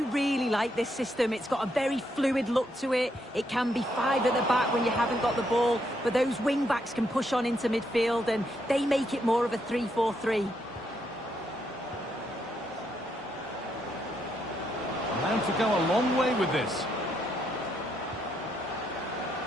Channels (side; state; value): both; normal; correlation 0.77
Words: really like this system. It's got a very fluid look to it. It can be five at the back when you haven't got the ball, but those wing-backs can push on into midfield, and they make it more of a 3-4-3. Allowed to go a long way with this.